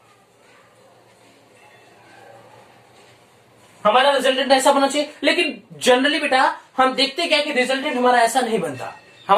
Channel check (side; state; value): both; identical; correlation 1.00